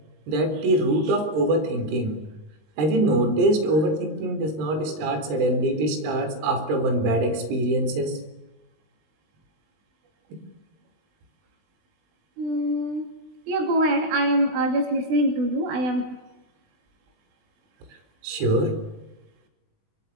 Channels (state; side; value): late; left; 19 ms